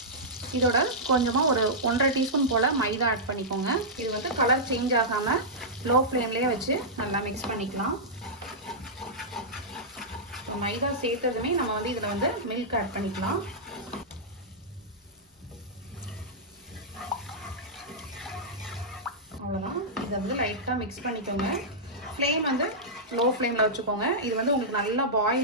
இதோட கொஞ்சமாக ஒரு 1.5 டீஸ்பூன் போல் மைதா ஆட் பண்ணிக்கோங்க. இது வந்து கலர் சேஞ்ச் ஆகாமல் லோ ஃப்ளேம்லேயே வச்சு நல்லா மிக்ஸ் பண்ணிக்கலாம். மைதா சேர்த்ததுமே நம்ம வந்து இதில் வந்து மில்க் ஆட் பண்ணிக்கலாம். அவ்வளோதான். இதை வந்து லைட்டாக மிக்ஸ் பண்ணிக்கோங்க. ஃப்ளேம் வந்து லோ ஃப்ளேமில் வச்சுக்கோங்க. இது வந்து உங்களுக்கு நல்லா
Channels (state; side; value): normal; both; correlation -0.11